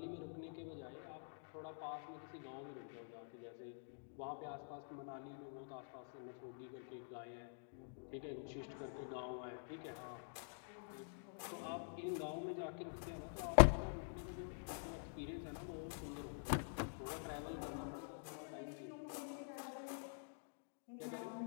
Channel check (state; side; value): silent; right; digital silence